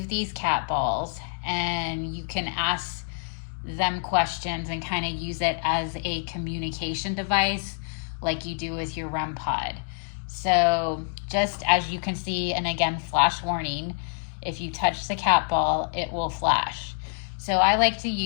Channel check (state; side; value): silent; right; digital silence